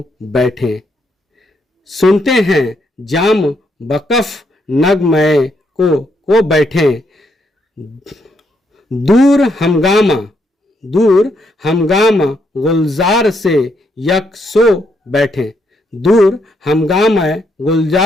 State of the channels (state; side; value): normal; both; correlation 0.76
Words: बैठे, सुनते हैं जाम बकफ नगमय को बैठे, दूर हमगामा गुलजार से यक सो बैठे, दूर हमगामा